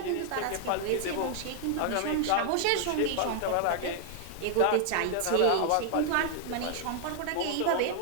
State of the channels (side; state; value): both; different; correlation 0.00